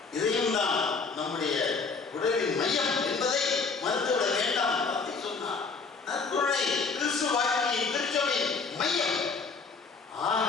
இதயம்தான் நம்முடைய உடலின் மையம் என்பதை மறுத்துவிட வேண்டாம். அப்படி சொன்னார். நற்கருணை கிறிஸ்து வாழ்க்கையின் திருச்சபையின் மையம். ஆக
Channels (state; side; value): quieter; right; 4.7 dB